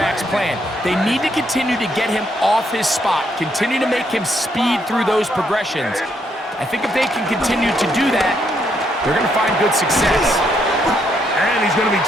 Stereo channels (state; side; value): normal; both; correlation 0.75